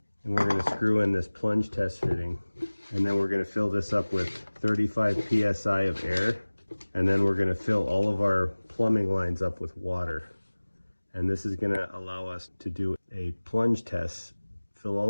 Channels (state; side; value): inverted; both; correlation -1.00